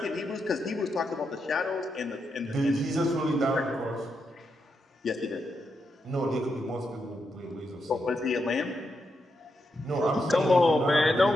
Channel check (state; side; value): normal; both; correlation 0.83